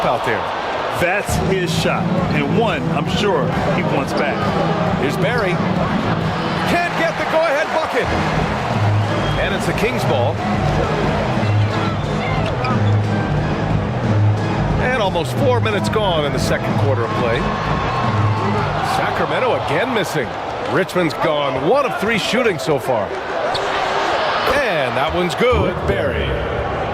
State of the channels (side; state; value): both; identical; correlation 1.00